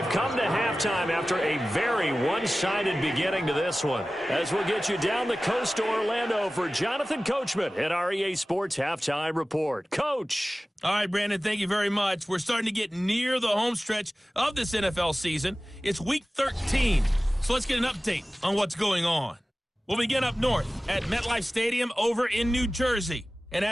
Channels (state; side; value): normal; both; correlation 0.97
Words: come to halftime after a very one-sided beginning to this one. As we'll get you down the coast to Orlando for Jonathan Coachman at our EA Sports Halftime Report. Coach. All right, Brandon, thank you very much. We're starting to get near the home stretch of this NFL season. It's Week 13, so let's get an update on what's going on. We'll begin up north at MetLife Stadium over in New Jersey. And